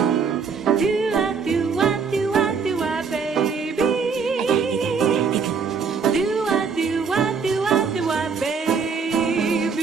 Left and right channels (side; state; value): left; quieter; 5.6 dB